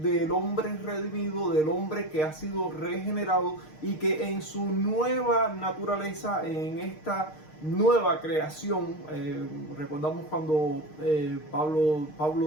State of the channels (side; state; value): right; late; 6.5 ms